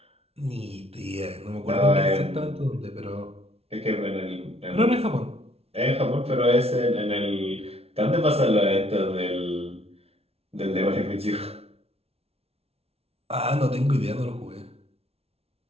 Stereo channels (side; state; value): left; late; 0.30 ms